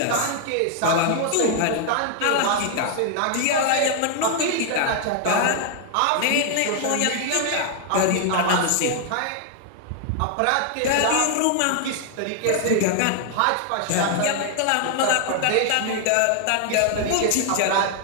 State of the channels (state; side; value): different; both; correlation 0.00